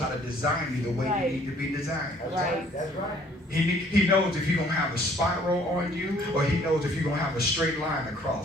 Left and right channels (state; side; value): normal; both; correlation 0.59